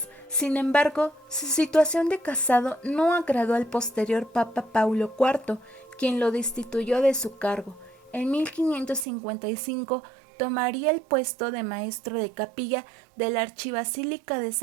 Sin embargo, su situación de casado no agradó al posterior Papa Paulo IV, quien lo destituyó de su cargo. En 1555 tomaría el puesto de maestro de capilla de la Archibasílica de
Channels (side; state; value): left; drops out; at 9.1 s